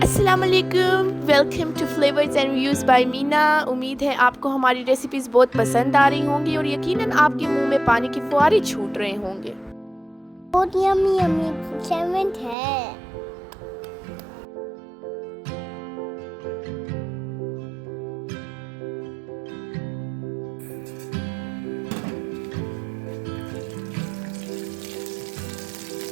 वालेकुम, welcome to flavours and reviews by Meena. उम्मीद है आपको हमारी रेसिपीज़ बहुत पसंद आ रही होंगी और यकीनन आपके मुंह में पानी के फुहारे छूट रहे होंगे। बहुत यम्मी यम्मी सैंडविच है।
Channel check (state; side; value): drops out; left; at 12.6 s